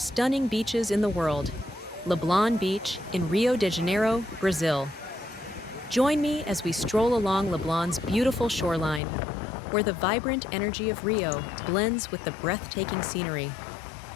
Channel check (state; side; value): drops out; right; at 9.0 s